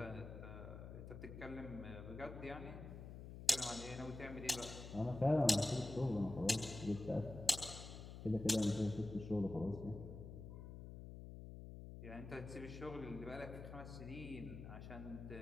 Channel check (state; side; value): noise; left; hum, 10 dB below the sound